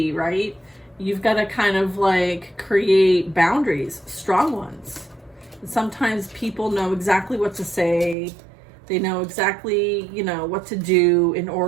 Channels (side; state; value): left; drops out; at 8.2 s